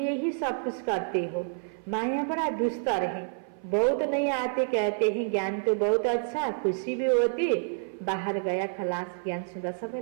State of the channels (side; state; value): left; silent; 56 dB below the other